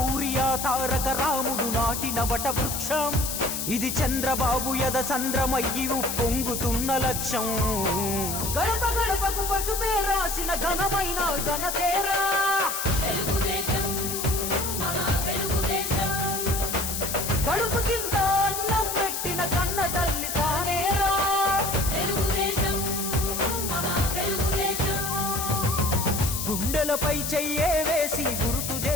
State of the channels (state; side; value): noise; left; hiss, 3 dB below the sound